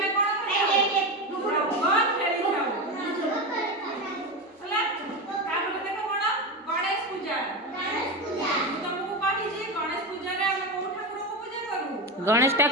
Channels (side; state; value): both; normal; correlation 0.18